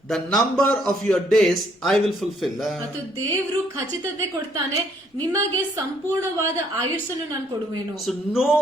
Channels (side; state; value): both; normal; correlation 0.67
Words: the number of your days I will fulfill. ಮತ್ತು ದೇವರು ಖಚಿತತೆ ಕೊಡ್ತಾನೆ, ನಿಮಗೆ ಸಂಪೂರ್ಣವಾದ ಆಯುಷ್ಯನ್ನು ನಾನು ಕೊಡುವೆನು. So no